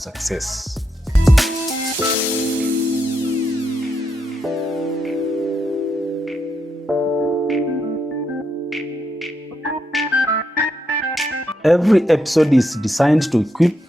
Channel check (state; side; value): normal; both; correlation 0.81